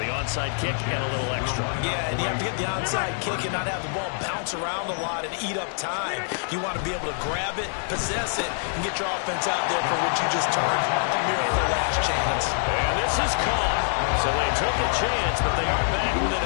onside kick and a little extra. Yeah, and you have to get the onside kick and not have the ball bounce around a lot and eat up time. You want to be able to grab it, possess it, and get your offense out there for what you just termed a miracle last chance. And this is caught. So they took a chance, but they are back within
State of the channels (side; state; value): right; silent; digital silence